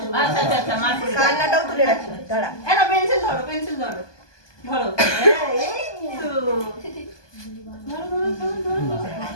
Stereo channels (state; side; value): late; right; 1.2 ms